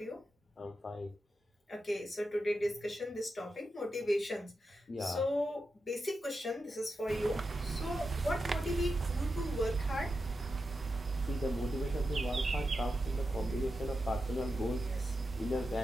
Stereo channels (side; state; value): both; normal; correlation 0.89